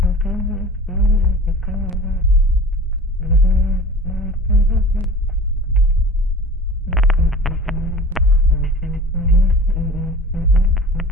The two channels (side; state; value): both; normal; correlation 0.39